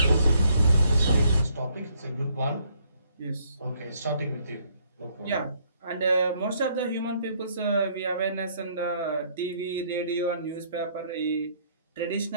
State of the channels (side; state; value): both; inverted; correlation -0.67